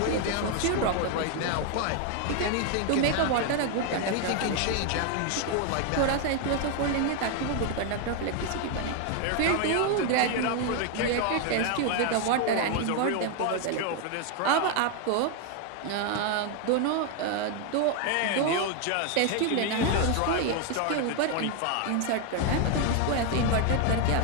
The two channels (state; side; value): different; both; correlation 0.01